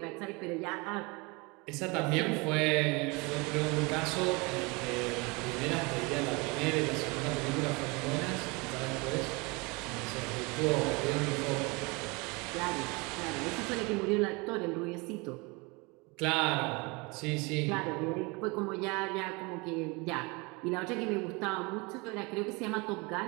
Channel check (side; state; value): left; quieter; 27.2 dB